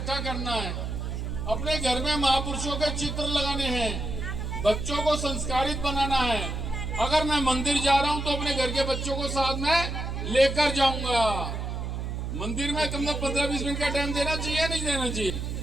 करना है। अपने घर में महापुरुषों के चित्र लगाने हैं, बच्चों को संस्कारित बनाना है। अगर मैं मंदिर जा रहा हूं तो अपने घर के बच्चों को साथ में लेकर जाऊंगा। मंदिर में कम से कम 15-20 मिनट का टाइम देना चाहिए, नहीं देना चाहिए।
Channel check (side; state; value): right; noise; hum, 4 dB below the sound